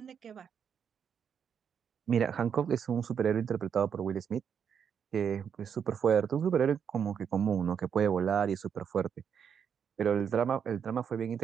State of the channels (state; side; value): quieter; left; 7.6 dB